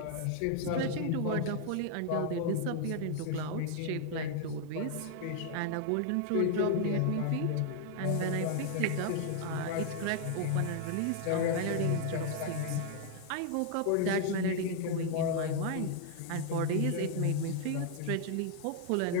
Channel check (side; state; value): both; different; correlation 0.00